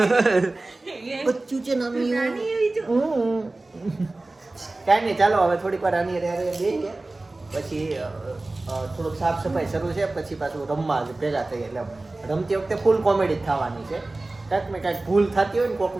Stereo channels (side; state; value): left; quieter; 3.0 dB